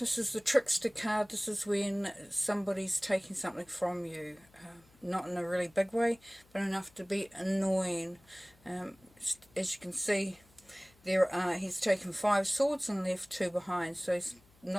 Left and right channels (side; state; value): left; noise; hum, 29 dB below the sound